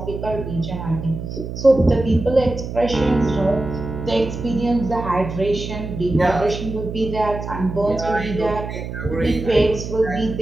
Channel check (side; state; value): right; noise; hum, 7 dB below the sound